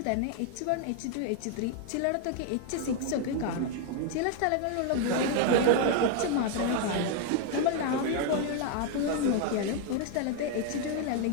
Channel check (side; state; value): both; different; correlation 0.01